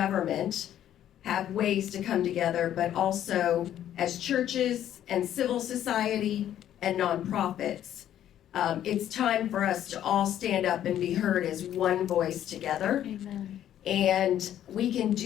have ways to come together, but also as churches and civil society and nonprofits. It's time for us to all stand up and be heard as one voice together. Amen. And we can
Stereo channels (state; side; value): quieter; right; 11.2 dB